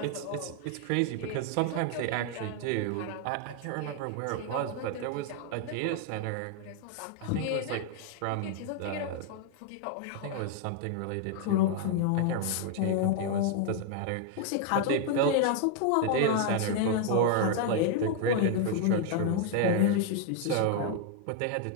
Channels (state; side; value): different; both; correlation 0.00